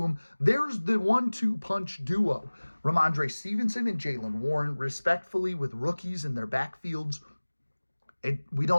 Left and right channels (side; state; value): both; inverted; correlation -1.00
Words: There's the 1-2 punch duo. Ramondre Stevenson and Jaylen Warren, respectfully, with rookies in their backfields. We